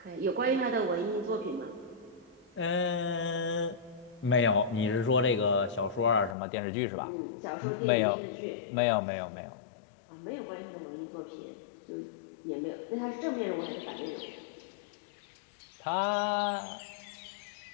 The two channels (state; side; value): drops out; right; at 6.4 s